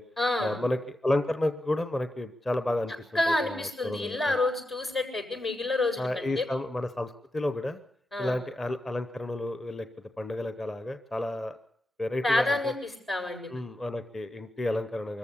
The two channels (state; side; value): normal; both; correlation 0.88